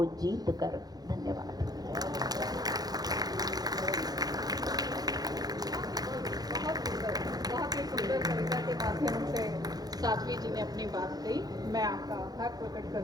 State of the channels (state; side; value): late; left; 0.19 ms